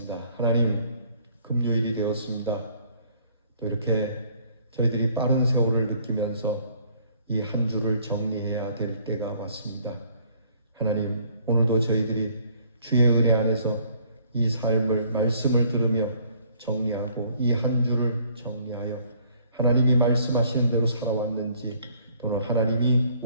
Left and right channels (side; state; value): both; inverted; correlation -0.61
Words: 하나님, 금요일이 되었습니다. 또 이렇게 저희들이 빠른 세월을 느끼면서 이 한 주를 정리해야 될 때가 왔습니다. 하나님, 오늘도 저희들이 주의 은혜 안에서 이 삶을, 말씀을 들으며 정리하고 이 한 주를 정리하여 하나님이 말씀하시는 대로 살아왔는지 또는 하나님이